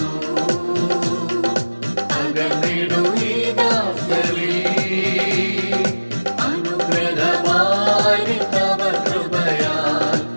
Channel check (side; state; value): both; inverted; correlation -1.00